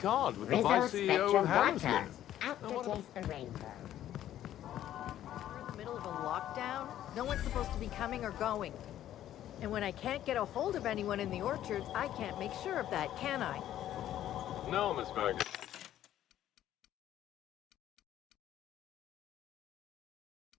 with the Rizzo Vice CEO Spectrum of Hammersmith. Water. Out to taste the rainbow. We're in the middle of a lockdown. No one's supposed to be coming or going. And when I can't get a hold of anyone in the orchards, I can't make sure of that, can I? No, Miss Bergen.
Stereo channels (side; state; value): right; quieter; 12.1 dB